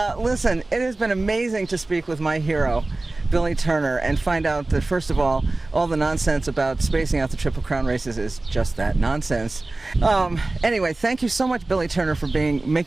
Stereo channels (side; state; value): left; quieter; 3.0 dB